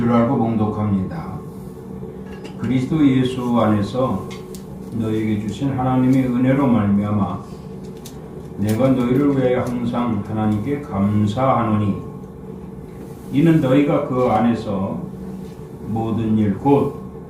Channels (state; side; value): identical; both; correlation 1.00